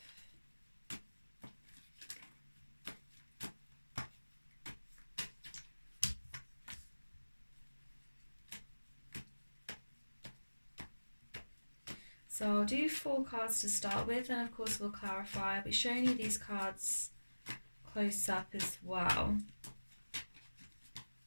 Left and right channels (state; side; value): inverted; both; correlation -1.00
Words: So I'll do 4 cards to start with, and of course we'll clarify. I'll be showing you these cards close up as well.